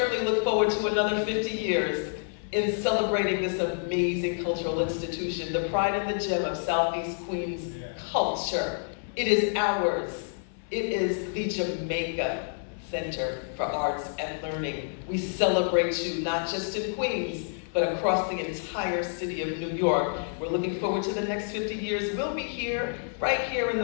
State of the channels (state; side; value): silent; right; 59 dB below the other